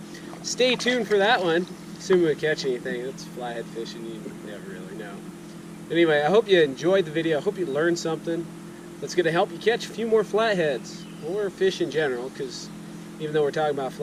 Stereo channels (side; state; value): both; identical; correlation 1.00